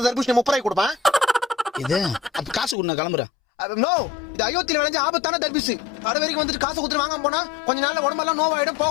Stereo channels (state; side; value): drops out; right; at 2.8 s